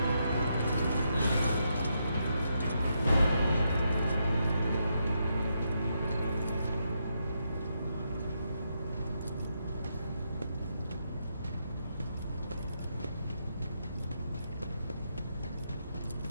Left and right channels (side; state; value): both; inverted; correlation -0.81